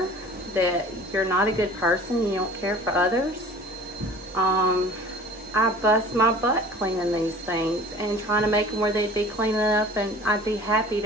that you're not a good person, you don't care for others. I bust my butt cleaning these things and trying to make them where they'd be clean enough, and I'd be happy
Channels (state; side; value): normal; both; correlation 0.45